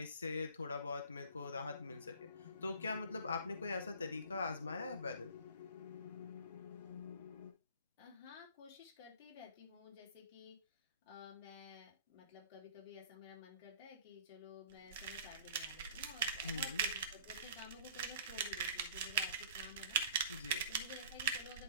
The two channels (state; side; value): inverted; both; correlation -0.46